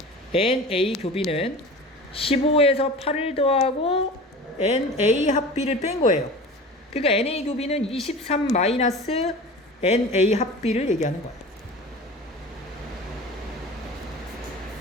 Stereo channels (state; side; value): normal; both; correlation 0.37